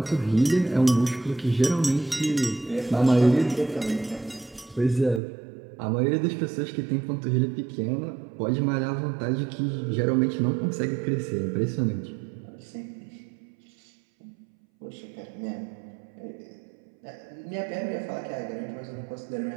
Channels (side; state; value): left; drops out; at 5.2 s